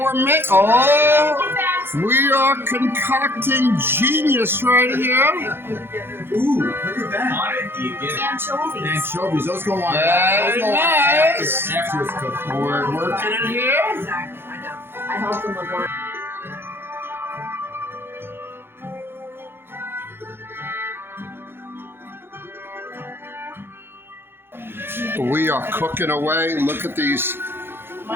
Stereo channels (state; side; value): late; left; 0.11 ms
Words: we are concocting genius right here. Ooh, look at that. Anchovies. Anchovies, those go on. Very nice. After it's cooked. We're working it here. Exactly, I know. I helped them with one. We are cooking away. Look at these